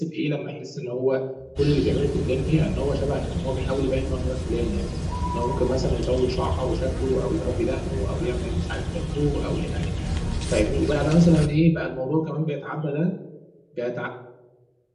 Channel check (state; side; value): identical; both; correlation 1.00